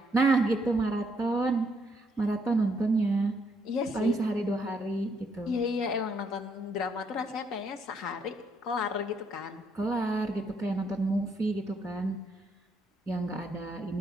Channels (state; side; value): normal; both; correlation 0.73